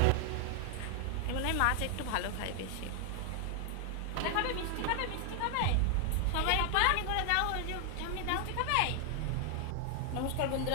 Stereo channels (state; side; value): different; both; correlation 0.00